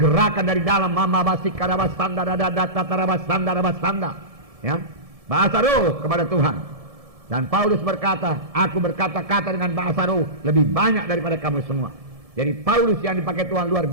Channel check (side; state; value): left; late; 1.7 ms